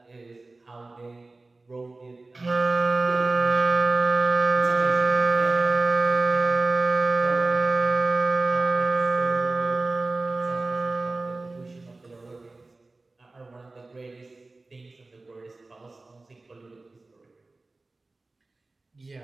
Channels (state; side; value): quieter; left; 3.3 dB